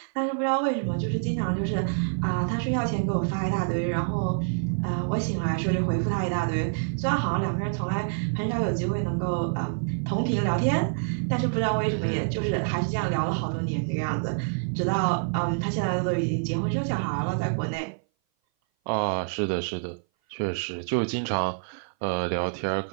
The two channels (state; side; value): silent; left; 57 dB below the other